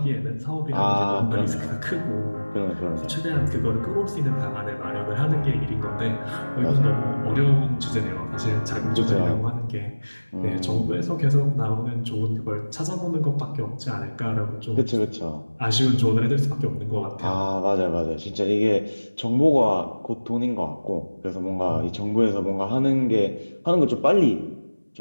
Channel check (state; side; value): inverted; both; correlation -1.00